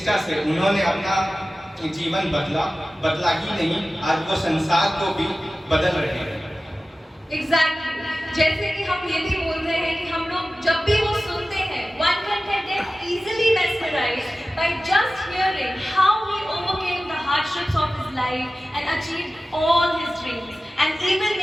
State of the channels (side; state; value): both; normal; correlation 0.96